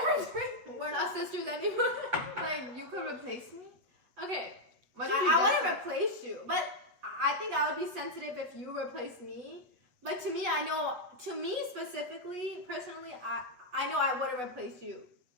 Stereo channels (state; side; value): late; left; 8.3 ms